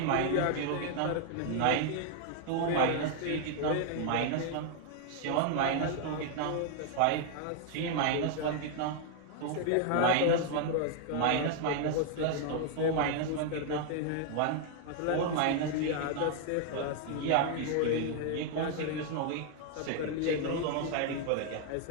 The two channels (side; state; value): both; different; correlation 0.00